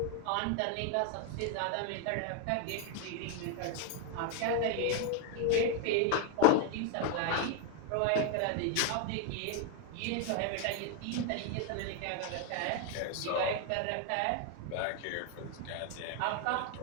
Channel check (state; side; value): different; both; correlation 0.01